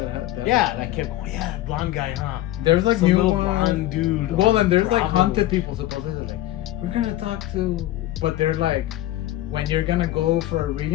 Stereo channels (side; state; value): right; quieter; 15.0 dB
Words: have that. Yeah, that kept. Oh yeah, blonde guy, huh? There's like Some new little ones. blonde dude. Well, on then there's like Bravo. haunted people supposedly. Like, we're gonna talk to, but they're like, when you're gonna go for a